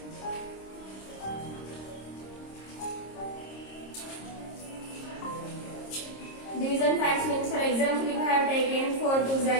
Division facts means, for example, if I have taken 4 2s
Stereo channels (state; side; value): late; right; 26 ms